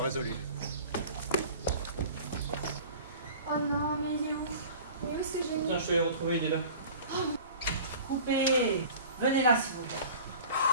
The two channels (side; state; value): both; inverted; correlation -0.41